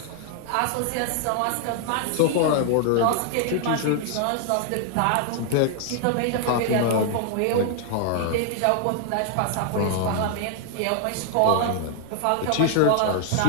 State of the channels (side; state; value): both; different; correlation 0.00